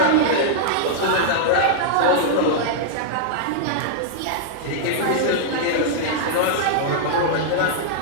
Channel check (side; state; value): both; different; correlation -0.02